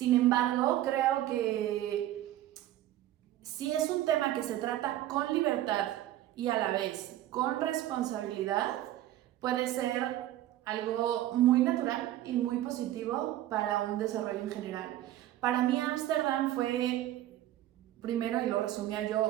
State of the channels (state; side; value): quieter; left; 13.7 dB